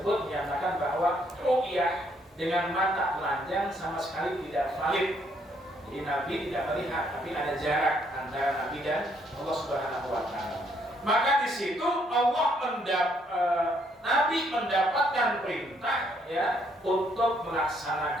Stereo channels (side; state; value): both; normal; correlation 0.70